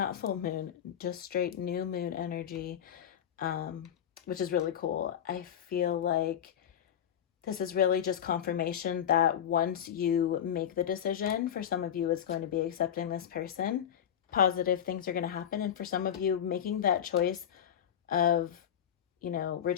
full moon, just straight new moon energy, which is really cool. I feel like this is really just confirmation that once you make the decision, for some of you, it's going to be accepting this person. Positive things are going to happen. And for some of you, making that choice of, you know,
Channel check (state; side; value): quieter; right; 9.4 dB